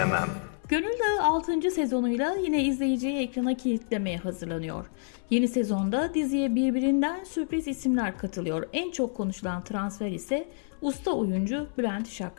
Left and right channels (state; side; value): silent; right; 55 dB below the other